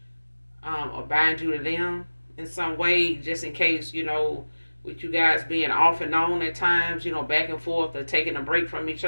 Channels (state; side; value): inverted; both; correlation -1.00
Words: or bind you to them in some way, just in case, with you guys being off and on at times, back and forth, or taking a break from each